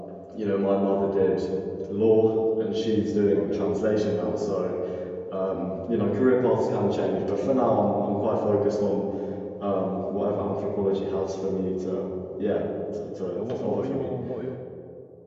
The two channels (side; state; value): both; identical; correlation 1.00